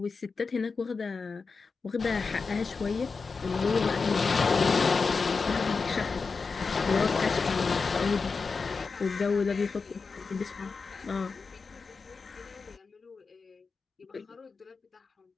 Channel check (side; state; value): right; quieter; 4.7 dB